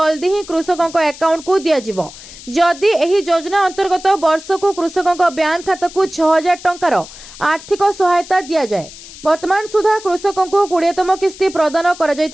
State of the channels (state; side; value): noise; left; hiss, 17 dB below the sound